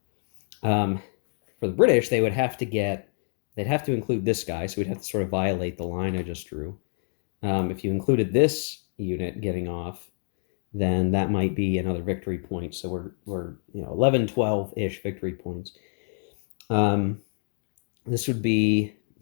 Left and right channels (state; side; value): silent; right; 60 dB below the other